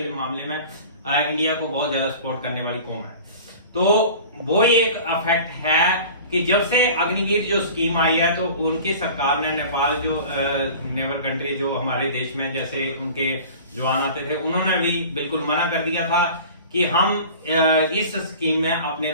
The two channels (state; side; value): inverted; both; correlation -0.41